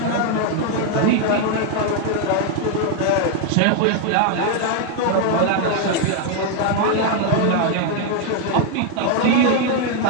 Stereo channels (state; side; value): different; both; correlation 0.00